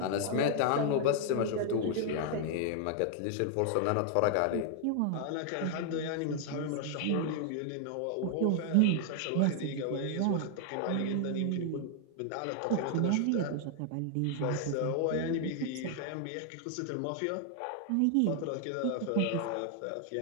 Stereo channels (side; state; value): both; different; correlation 0.00